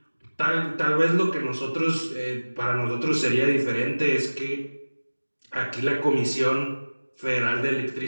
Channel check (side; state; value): both; inverted; correlation -1.00